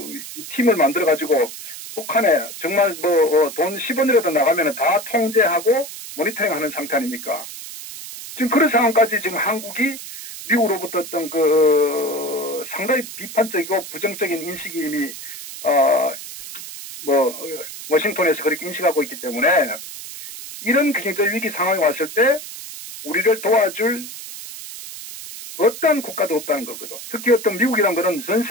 팀을 만들어 가지고 북한에 정말 돈 10원이라도 나가면은 다 통제하고 모니터링하는 상태 아닙니까? 지금 그런 상황까지 지금 한국이 미국으로부터 어떤 그 상당히 비판적이고 부정적인 인식이 이미 워싱턴에서 그렇게 인식하고 있기 때문에 이런 경제 위기 상황이 왔을 때 우리를 도와줄 어떤 국가도 없다는 거거든. 특히 어떤 미국이란 거는 전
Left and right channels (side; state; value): right; noise; hiss, 11 dB below the sound